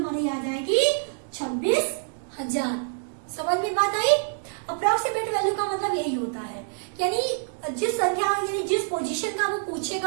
आ जाएगी 26,000। समझ में बात आई? अप्रोक्सीमेट वैल्यू का मतलब यही होता है, यानी जिस संख्या यानी जिस पोजीशन का वो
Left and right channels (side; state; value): left; silent; digital silence